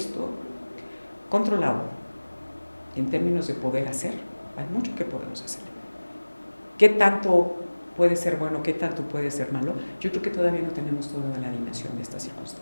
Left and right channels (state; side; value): inverted; both; correlation -1.00